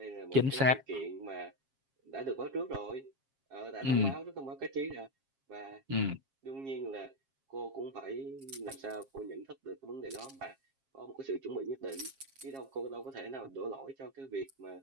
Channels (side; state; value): left; late; 7.4 ms